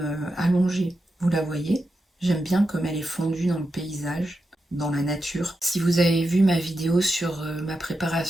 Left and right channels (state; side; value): normal; both; correlation 0.88